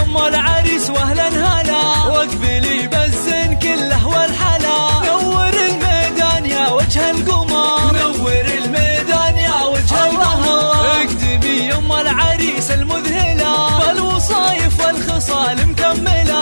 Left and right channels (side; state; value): both; inverted; correlation -1.00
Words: العريس واهلا هلا، واقبلي بالزين كله والحلا. نور الميدان يا وجه القمر، نور الميدان يا وجه القمر. اقدمي يا العريس المذهلة، بالوصايف والخصال